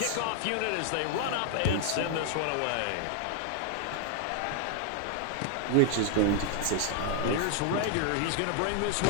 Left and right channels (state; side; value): different; both; correlation 0.00